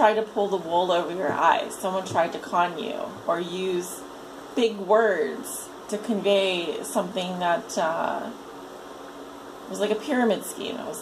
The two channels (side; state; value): both; identical; correlation 1.00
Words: to pull the wool over your eyes. Someone tried to con you or use big words to convey something that was like a pyramid scheme. It was